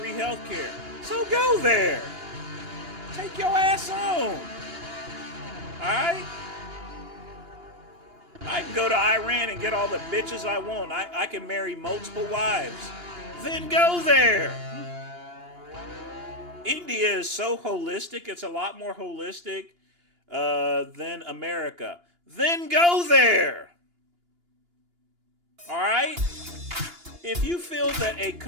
health care. So go there. Take your ass on. Alright? I can go to Iran and get all the bitches I want. I can marry multiple wives. Then go there. India is so holistic. It's a lot more holistic than America. Then go there. All right? If you feel that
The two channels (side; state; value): left; late; 2.9 ms